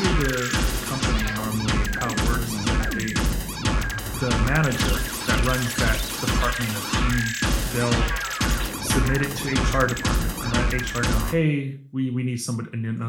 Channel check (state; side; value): identical; both; correlation 1.00